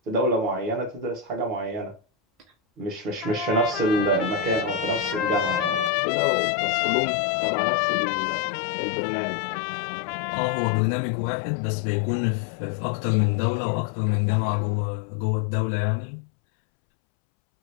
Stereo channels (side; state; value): right; drops out; at 5.9 s